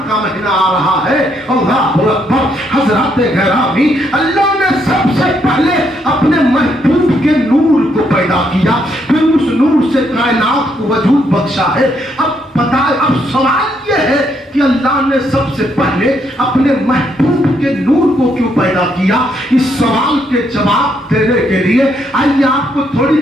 का महीना आ रहा है। अल्लाहु अकबर। हजरत गिरामी, अल्लाह ने सबसे पहले अपने महबूब के नूर को पैदा किया, फिर उस नूर से कायनात को वजूद बख्शा है। अब पता, अब सवाल यह है कि अल्लाह ने सबसे पहले अपने महबूब के नूर को क्यों पैदा किया? इस सवाल के जवाब देने के लिए आइए आपको थोड़ी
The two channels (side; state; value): both; normal; correlation 0.74